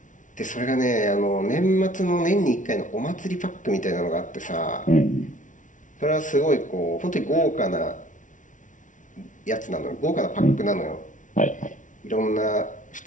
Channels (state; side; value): late; right; 0.37 ms